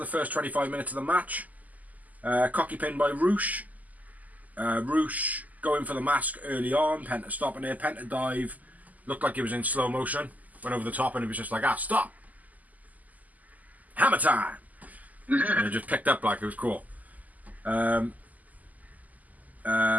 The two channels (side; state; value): left; late; 0.079 ms